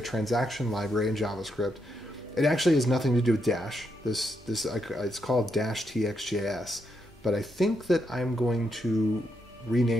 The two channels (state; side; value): normal; both; correlation 0.80